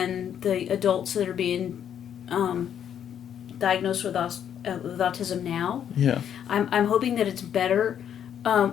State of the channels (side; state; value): right; quieter; 9.2 dB